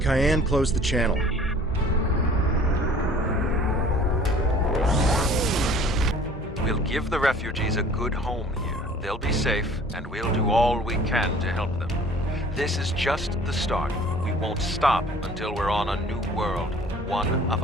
Cayenne closed the channel. We'll give the refugees a good home here. They'll be safe, and we'll do all we can to help them. This is just the start. We won't stop until we're on a new world, one of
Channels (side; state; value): both; normal; correlation 0.50